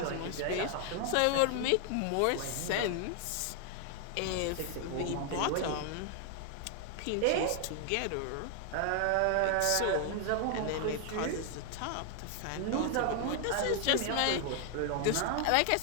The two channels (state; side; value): different; both; correlation 0.00